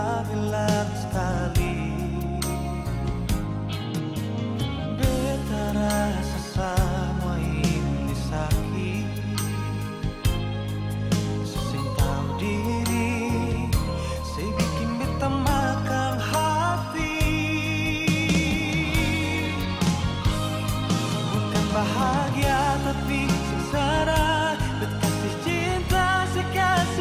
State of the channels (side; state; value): both; identical; correlation 1.00